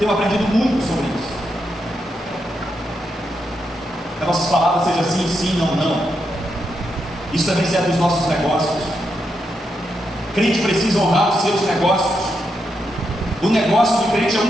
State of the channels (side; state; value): both; normal; correlation 0.83